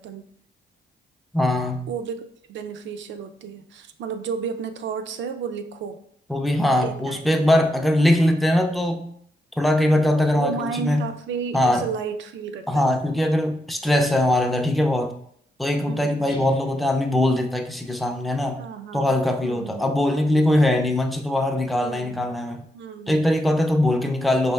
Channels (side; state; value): both; normal; correlation 0.82